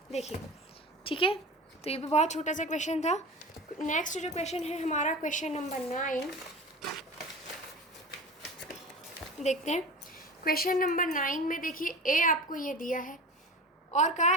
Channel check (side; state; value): both; normal; correlation 0.33